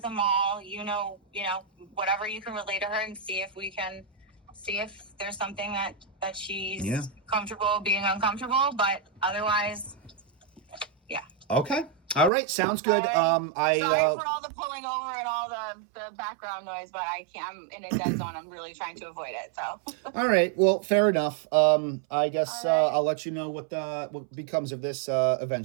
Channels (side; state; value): left; drops out; at 12.3 s